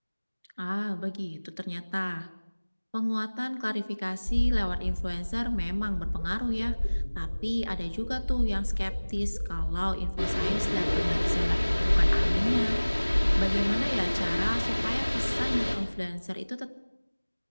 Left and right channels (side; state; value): both; inverted; correlation -1.00